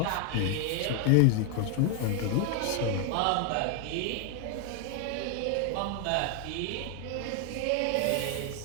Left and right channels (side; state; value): both; different; correlation 0.00